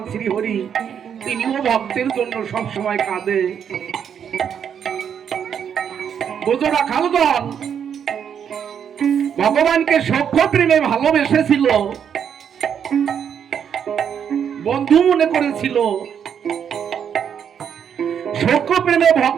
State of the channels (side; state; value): left; quieter; 8.1 dB